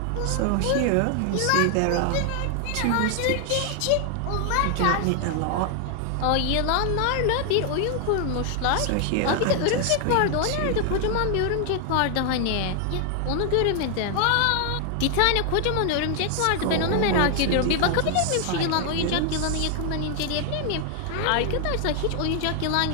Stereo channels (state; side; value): different; both; correlation 0.00